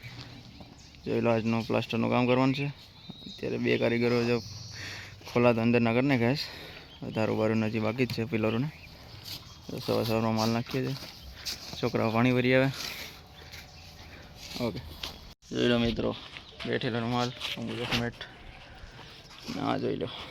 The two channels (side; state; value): both; identical; correlation 1.00